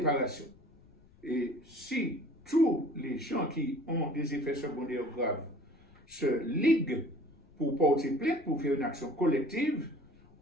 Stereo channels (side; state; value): left; noise; rumble, 28 dB below the sound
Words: Et si tous les gens qui ont des effets secondaires graves se liguent pour porter plainte, pour faire une action collective,